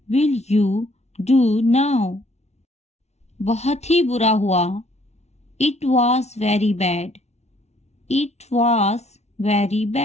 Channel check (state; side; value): late; right; 0.32 ms